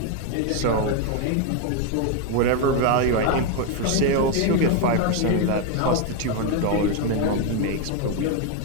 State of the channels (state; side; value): different; both; correlation 0.02